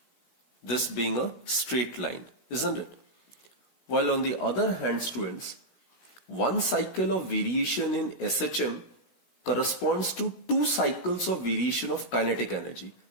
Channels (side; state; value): right; late; 17 ms